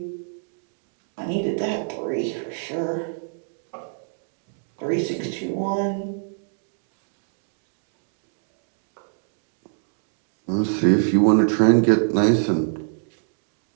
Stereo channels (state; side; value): silent; left; digital silence